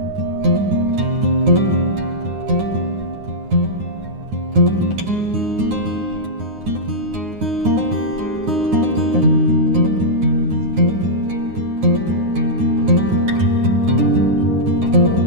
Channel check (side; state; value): left; late; 9.6 ms